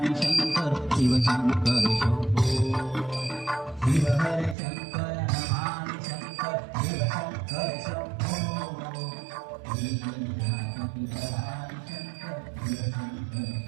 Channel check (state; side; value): drops out; left; at 4.5 s